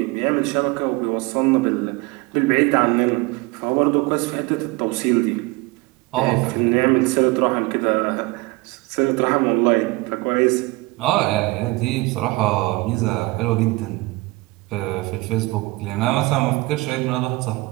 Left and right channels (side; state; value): left; quieter; 22.6 dB